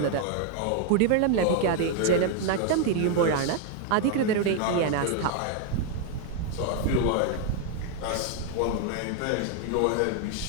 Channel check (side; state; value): both; different; correlation 0.00